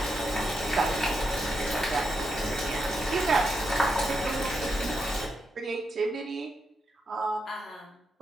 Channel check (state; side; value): normal; both; correlation 0.83